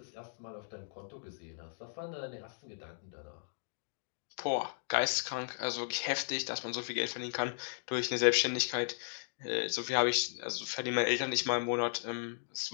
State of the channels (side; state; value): right; silent; digital silence